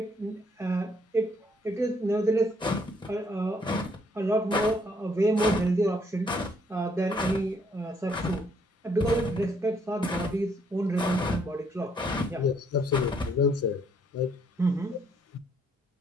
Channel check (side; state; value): both; normal; correlation 0.68